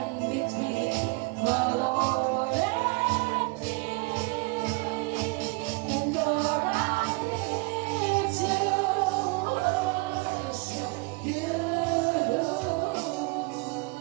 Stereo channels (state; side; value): quieter; left; 27.6 dB